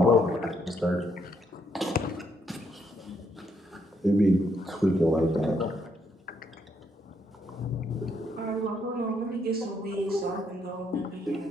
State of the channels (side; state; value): both; normal; correlation 0.73